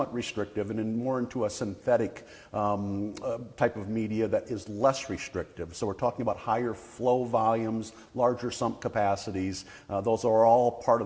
restrictive, and more into a synthetic type of media that is less restrictive. So we're talking about higher flow volumes, larger sump capacities. Those are all part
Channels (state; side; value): identical; both; correlation 1.00